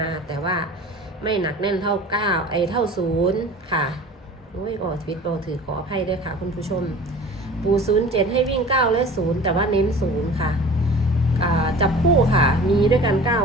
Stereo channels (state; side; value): normal; both; correlation 0.42